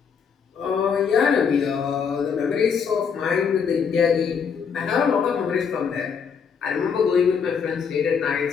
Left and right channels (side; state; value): right; quieter; 6.5 dB